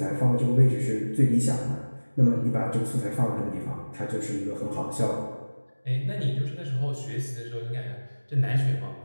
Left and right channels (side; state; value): both; inverted; correlation -1.00